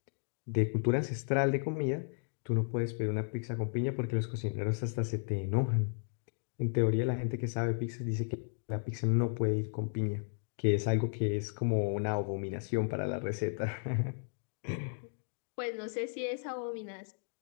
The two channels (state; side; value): silent; right; digital silence